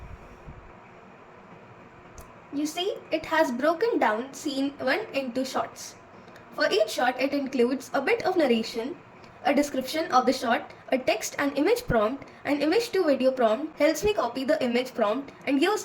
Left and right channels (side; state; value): both; identical; correlation 1.00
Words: You see, it has broken down scene 1 into shots. For each shot, it includes a bit of narration, a description of the shot, a text and image prompt. An image to video prompt helps me copy the image prompt and